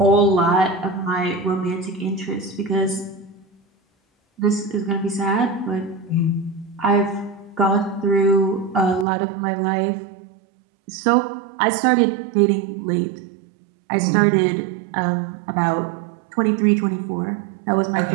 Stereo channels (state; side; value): drops out; left; at 9.1 s